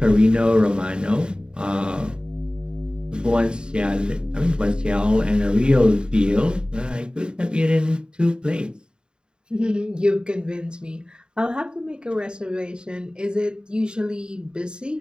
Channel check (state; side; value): late; left; 0.049 ms